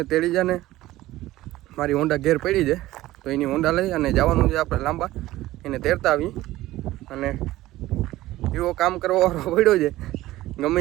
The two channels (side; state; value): left; quieter; 16.3 dB